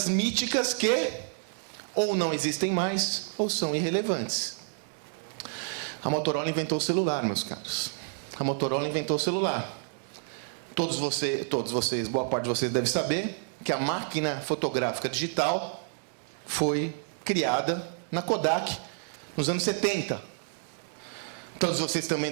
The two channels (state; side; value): silent; left; digital silence